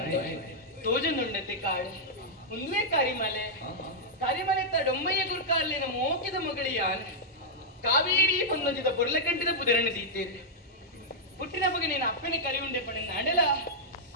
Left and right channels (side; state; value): both; normal; correlation -0.07